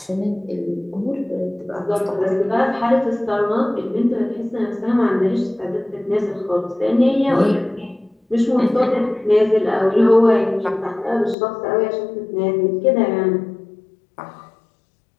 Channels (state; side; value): drops out; right; at 11.4 s